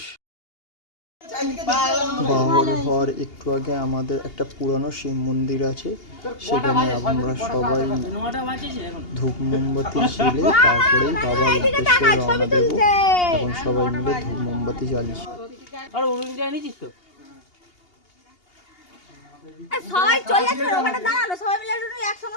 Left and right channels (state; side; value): late; right; 2.8 ms